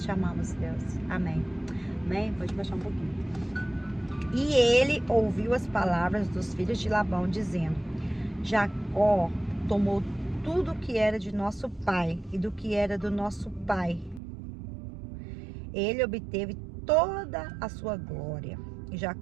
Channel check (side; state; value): left; drops out; at 14.2 s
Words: te amamos, Deus. Amém. Amém? Pode baixar um pouquinho. E ele ouviu as palavras dos filhos de Labão, dizendo: Jacó tomou tudo que era de nosso pai e do que era do nosso pai. Ele obteve toda a sua glória. E